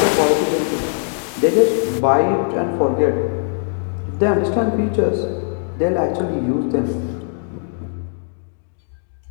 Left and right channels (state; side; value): silent; right; digital silence